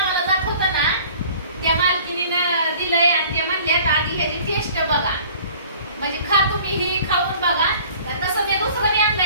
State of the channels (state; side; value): inverted; both; correlation -0.49